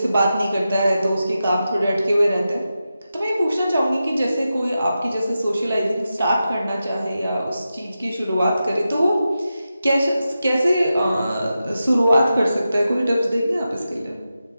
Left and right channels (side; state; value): both; inverted; correlation -0.91